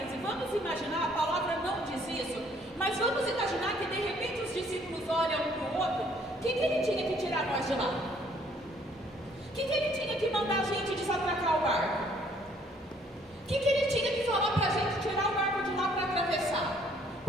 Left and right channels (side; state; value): both; normal; correlation 0.63